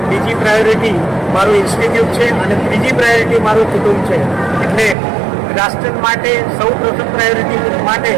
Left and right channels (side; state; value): left; drops out; at 5.0 s